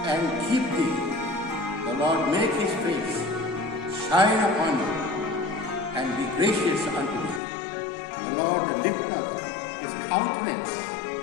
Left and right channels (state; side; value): drops out; right; at 7.4 s